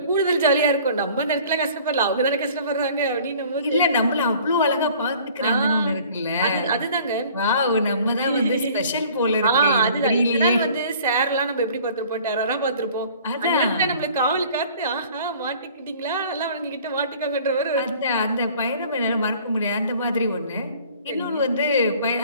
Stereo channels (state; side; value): inverted; both; correlation -0.50